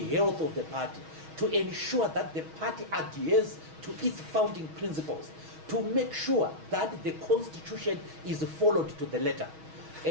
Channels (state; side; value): late; left; 6.3 ms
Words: health of the party, to ensure that the party adheres to its founding principles. to make sure that the Constitution is followed to the letter.